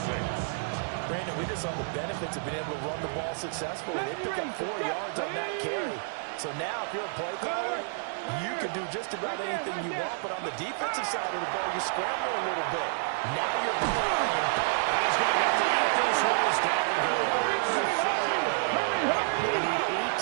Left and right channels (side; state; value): left; silent; digital silence